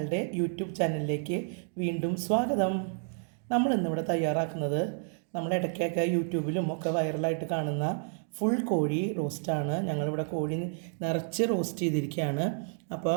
YouTube ചാനലിലേക്ക് വീണ്ടും സ്വാഗതം. നമ്മളിന്നിവിടെ തയ്യാറാക്കുന്നത് നമ്മൾ ഇടയ്ക്കൊക്കെ യൂട്യൂബിലും ഒക്കെ വൈറലായിട്ട് കാണുന്ന ഫുൾ കോഴി റോസ്റ്റാണ്. ഞങ്ങളിവിടെ കോഴി നിറച്ച് റോസ്റ്റ് ചെയ്തിരിക്കുകയാണ്. അപ്പോൾ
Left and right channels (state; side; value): silent; left; 58 dB below the other